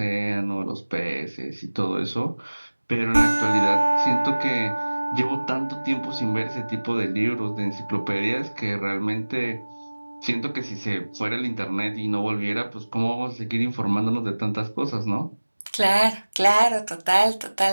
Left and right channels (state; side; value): inverted; both; correlation -1.00